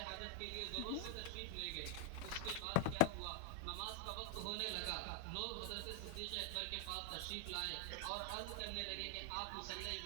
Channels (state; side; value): different; both; correlation 0.01